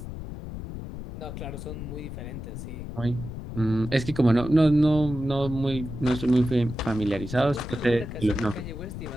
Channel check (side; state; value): left; noise; rumble, 9 dB below the sound